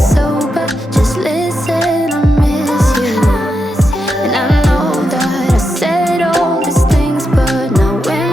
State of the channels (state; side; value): normal; both; correlation 0.86